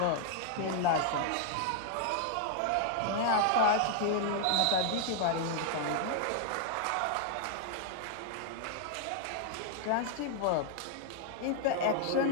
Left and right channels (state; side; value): different; both; correlation 0.00